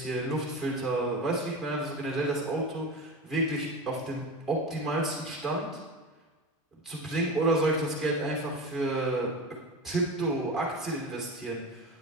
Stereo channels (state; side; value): normal; both; correlation 0.26